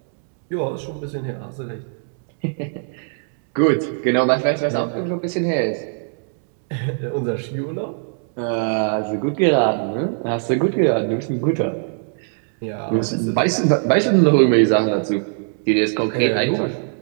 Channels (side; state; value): left; silent; 65 dB below the other